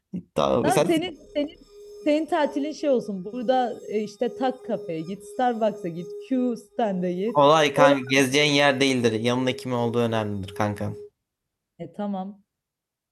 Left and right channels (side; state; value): both; identical; correlation 1.00